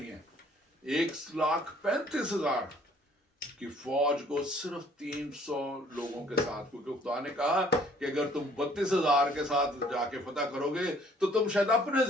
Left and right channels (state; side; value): normal; both; correlation 0.59